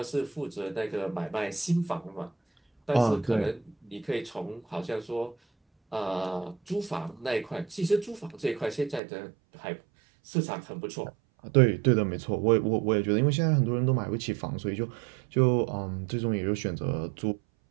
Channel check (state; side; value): drops out; left; at 9.0 s